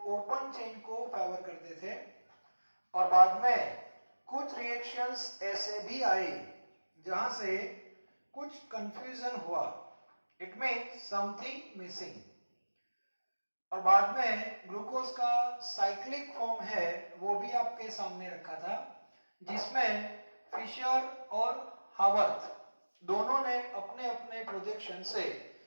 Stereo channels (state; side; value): inverted; both; correlation -1.00